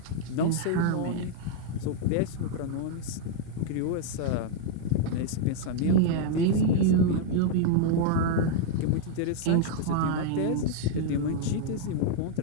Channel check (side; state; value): both; different; correlation 0.00